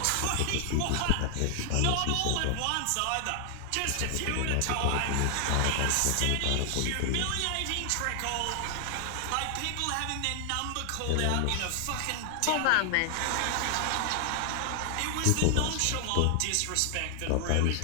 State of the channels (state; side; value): different; both; correlation 0.00